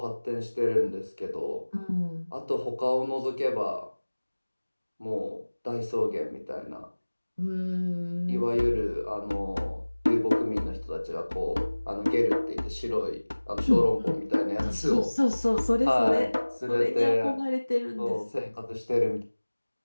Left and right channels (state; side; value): inverted; both; correlation -1.00